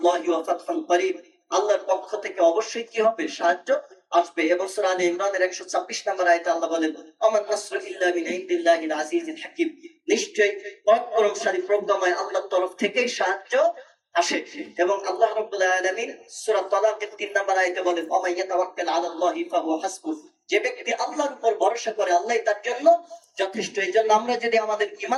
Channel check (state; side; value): identical; both; correlation 1.00